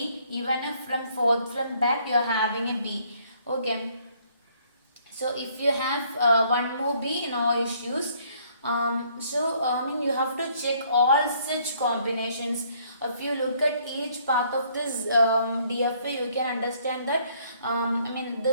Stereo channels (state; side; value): inverted; both; correlation -0.64